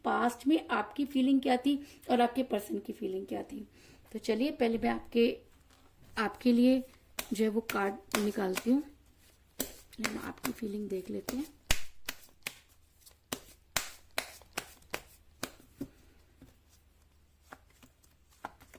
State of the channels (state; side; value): identical; both; correlation 1.00